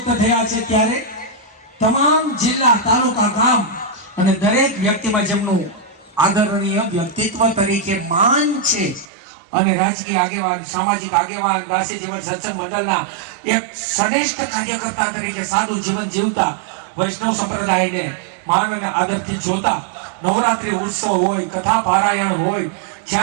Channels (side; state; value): left; drops out; at 9.1 s